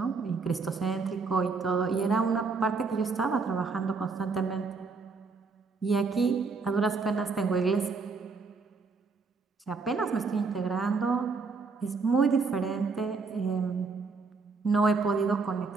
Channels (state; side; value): quieter; left; 4.5 dB